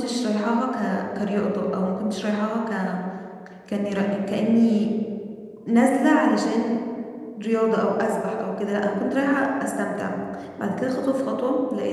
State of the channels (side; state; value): both; identical; correlation 1.00